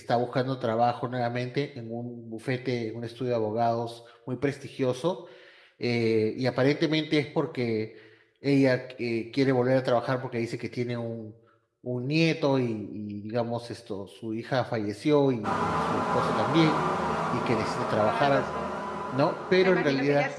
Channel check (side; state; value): both; identical; correlation 1.00